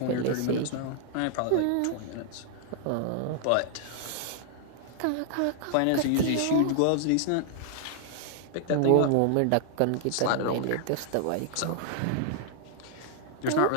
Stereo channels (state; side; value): different; both; correlation 0.00